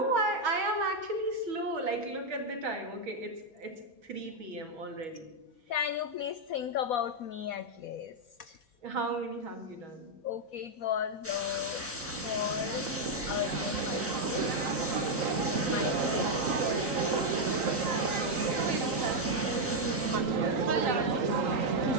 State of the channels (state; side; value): normal; both; correlation 0.00